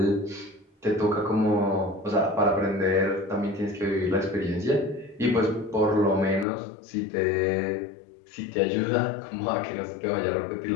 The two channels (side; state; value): right; drops out; at 6.5 s